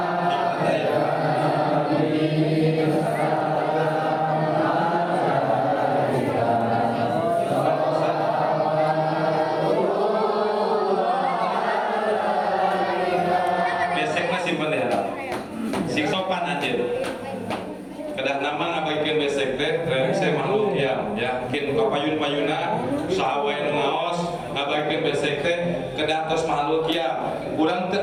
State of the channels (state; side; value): identical; both; correlation 1.00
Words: ya Nabi saya makhluk ya yakin kapayun-payuna sahawain ngaos ngabaikeun besek teh kedah tos makhluk ya urang teu